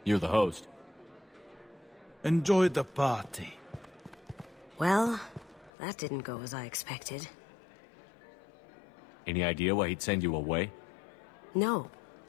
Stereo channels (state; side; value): drops out; right; at 5.7 s